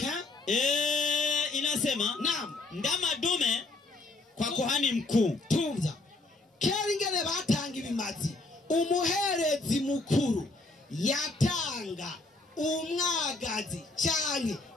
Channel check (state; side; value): quieter; right; 3.2 dB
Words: inasema naam ndama dume kwa kuhani mkuu tumza kera ingene batanga ibimazi umuherezi mukuru yatanga umwagazi cyane